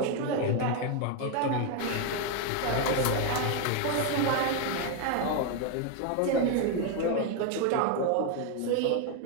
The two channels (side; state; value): both; different; correlation 0.01